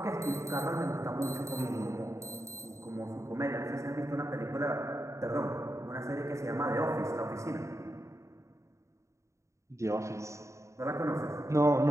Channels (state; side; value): late; left; 0.14 ms